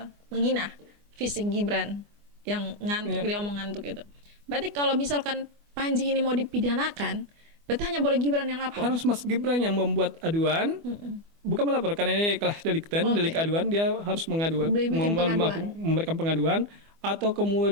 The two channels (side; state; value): left; late; 24 ms